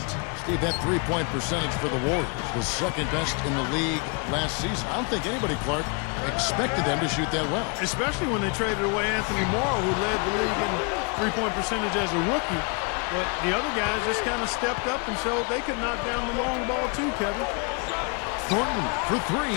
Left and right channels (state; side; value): quieter; right; 33.9 dB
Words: Steve, that three-point percentage for the Warriors was second best in the league last season. I don't think anybody, Clark, expected them to shoot that well. Especially when they traded away Anthony Morrow, who led the league in three-point percentage as a rookie. But the other guys just kind of stepped up and showed they could knock down the long ball too, Kevin. Thornton for